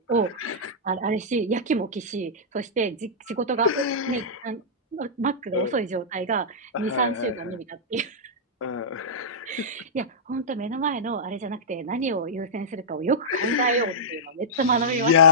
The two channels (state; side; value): normal; both; correlation -0.13